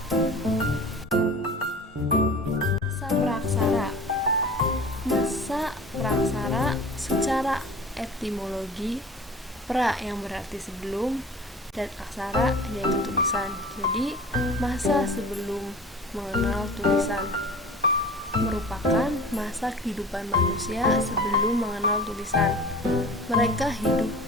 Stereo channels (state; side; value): normal; both; correlation 0.40